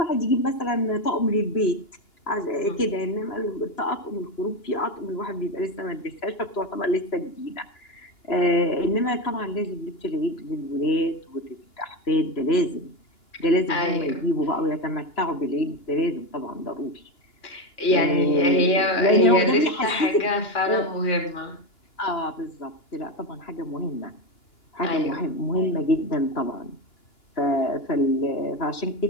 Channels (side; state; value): right; late; 2.9 ms